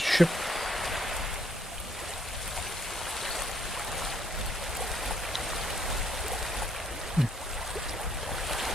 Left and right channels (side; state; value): both; normal; correlation 0.68